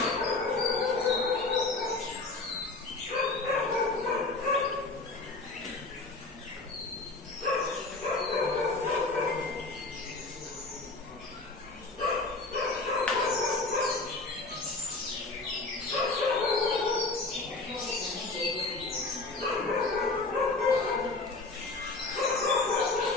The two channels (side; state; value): right; quieter; 3.4 dB